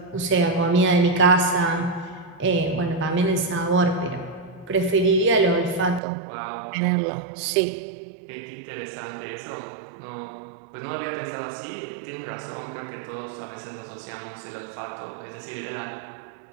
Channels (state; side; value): drops out; left; at 6.0 s